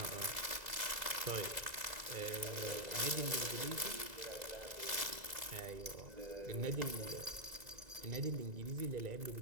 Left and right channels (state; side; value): late; left; 1.9 ms